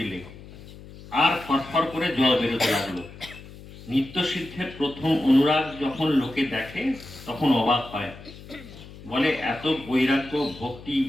আর ফরফর করে জল বেরোতে লাগলো। নিত্য সিদ্ধের প্রথম অনুরাগ যখন লোকে দেখে তখন অবাক হয়, বলে এত বৈরাগ্য, ভক্তি,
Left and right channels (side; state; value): left; noise; hum, 17 dB below the sound